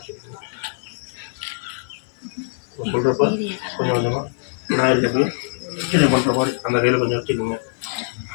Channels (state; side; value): silent; right; 57 dB below the other